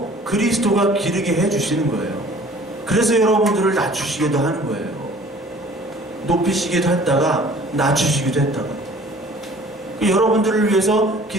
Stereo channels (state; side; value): normal; both; correlation 0.50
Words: 그리스도가 기르게 해주시는 거예요. 그래서 여러분들을 낮추시기도 하는 거예요. 높이시기도 했다가 낮추시기도 했다가. 여러분들을 위해서